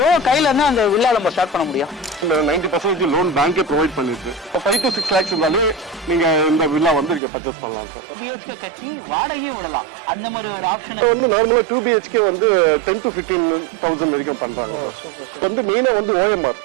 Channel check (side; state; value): left; drops out; at 7.2 s